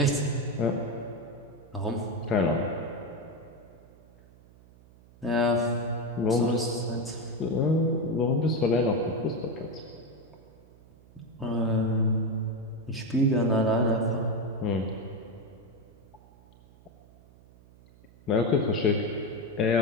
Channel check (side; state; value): right; noise; hum, 25 dB below the sound